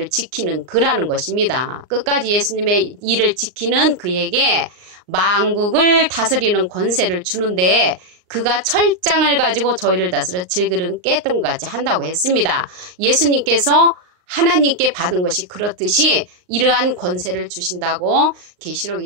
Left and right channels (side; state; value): left; late; 39 ms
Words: 지키는 그라는 것입니다. 끝까지 예수님의 일을 지키는 그에게 만국을 다스리는 권세를 주는데 그가 철장을 가지고 저희를 다스려 질그릇 깼던 것 같이 한다고 했습니다. 예수님께서 하나님께 받은 것이 그렇듯이 이러한 권세를 주신다고 계시록